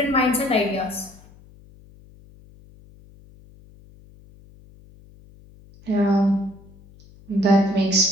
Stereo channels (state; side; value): noise; left; hum, 25 dB below the sound